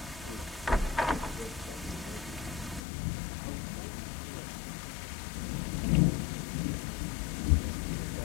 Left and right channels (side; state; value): right; drops out; at 2.8 s